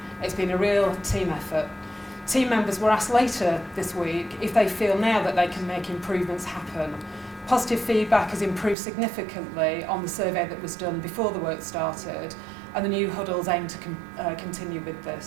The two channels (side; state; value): left; drops out; at 8.8 s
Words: It's been a real team effort. Team members were asked later this week if they feel now that they can make improvements happen. Positive feedback has improved significantly on the survey that was done before the work started, and the new huddles aim to continue with